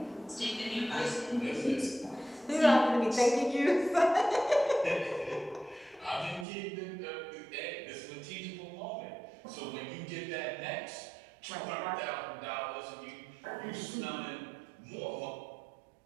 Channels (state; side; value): drops out; left; at 6.5 s